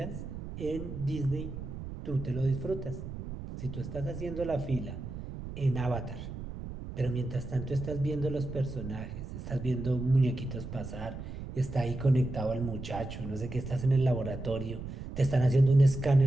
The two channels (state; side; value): noise; right; rumble, 9 dB below the sound